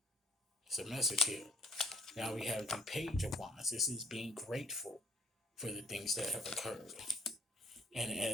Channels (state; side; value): normal; both; correlation 0.63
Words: It's a message here. Now we have the Page of Wands. This is being grateful for the things that have occurred. And